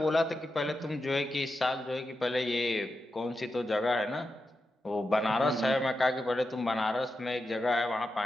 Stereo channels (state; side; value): normal; both; correlation 0.89